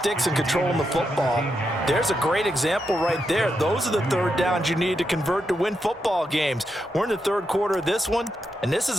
and controlling the football, there's a great example right there. Those are the third downs you need to convert to win football games. We're in the third quarter of this one, and this is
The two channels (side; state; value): both; normal; correlation 0.84